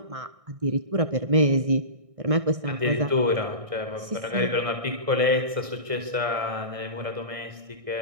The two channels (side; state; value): left; late; 1.6 ms